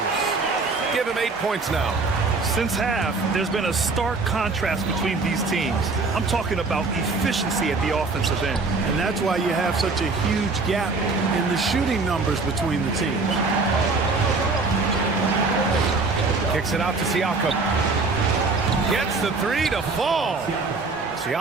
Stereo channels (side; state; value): left; quieter; 3.9 dB